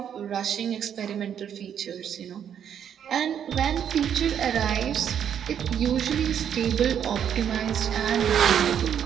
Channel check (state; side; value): quieter; left; 8.8 dB